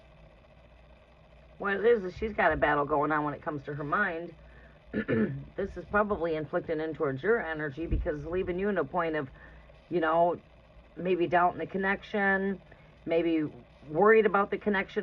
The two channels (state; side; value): identical; both; correlation 1.00